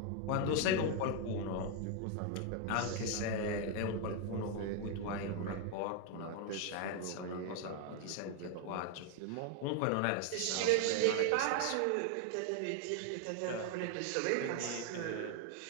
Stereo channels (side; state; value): both; different; correlation 0.01